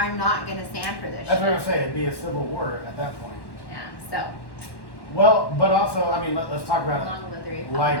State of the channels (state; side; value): late; right; 1.1 ms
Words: not gonna stand for this. That's what shit. I'm saying, it'd be a civil war at that point. Yeah. So Well, but also, I mean, let's talk about along with the it. Republican